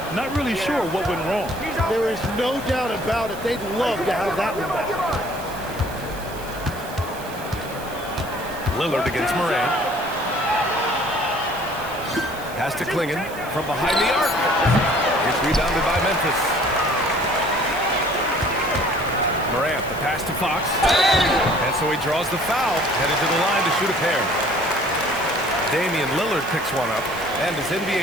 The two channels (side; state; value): right; noise; hiss, 17 dB below the sound